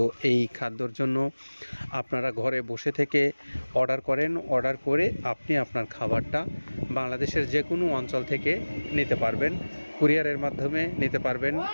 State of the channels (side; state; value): both; inverted; correlation -1.00